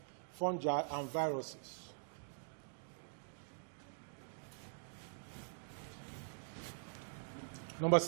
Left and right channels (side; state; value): left; silent; digital silence